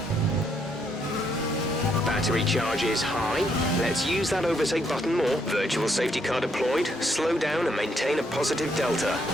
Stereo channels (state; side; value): normal; both; correlation 0.73